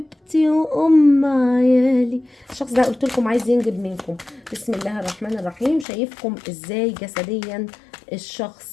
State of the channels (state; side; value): drops out; right; at 5.9 s